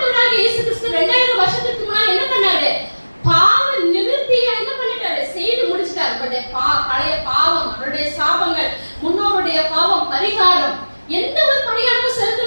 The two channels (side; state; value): both; inverted; correlation -1.00